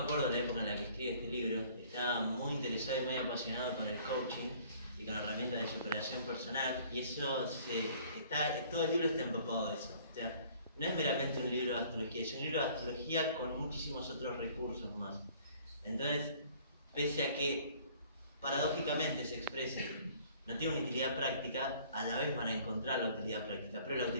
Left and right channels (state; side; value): inverted; both; correlation -0.55